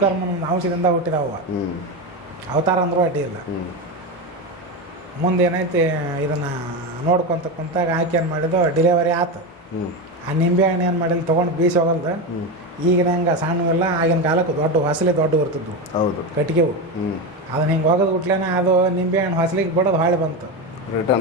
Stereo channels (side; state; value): both; normal; correlation 0.16